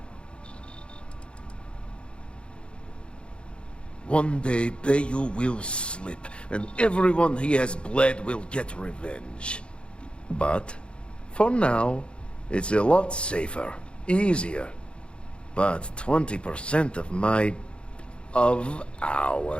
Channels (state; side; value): late; right; 0.057 ms